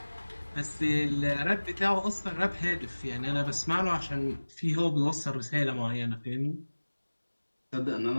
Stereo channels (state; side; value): inverted; both; correlation -1.00